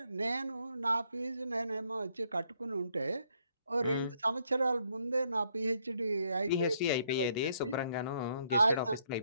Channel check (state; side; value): inverted; both; correlation -0.71